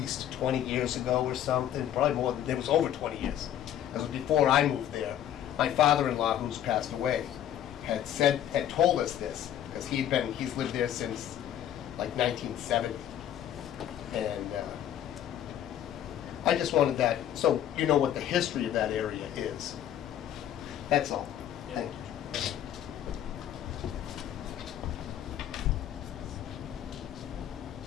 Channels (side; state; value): right; quieter; 10.9 dB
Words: 20 years ago or something, probably more, it was over 20 years. It was before I moved there. My father-in-law, who's passed away, had told us this, because he's lived there since like 1970. And I just wanted that, so you know what the history of that area is. That's all. Yeah. Thank you.